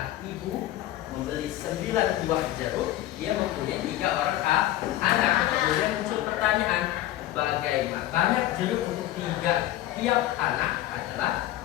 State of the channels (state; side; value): quieter; right; 14.2 dB